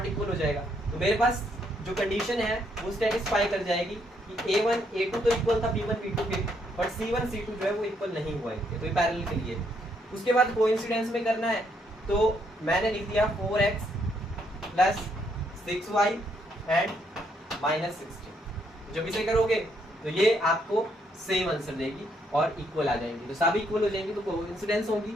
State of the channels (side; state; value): both; normal; correlation 0.73